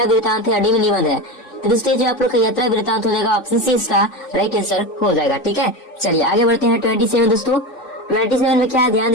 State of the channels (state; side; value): late; right; 3.5 ms